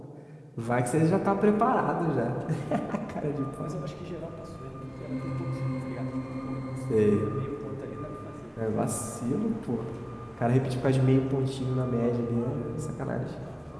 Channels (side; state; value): both; identical; correlation 1.00